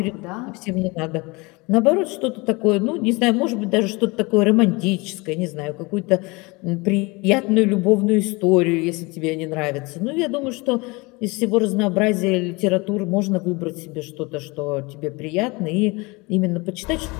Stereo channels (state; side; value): quieter; right; 25.6 dB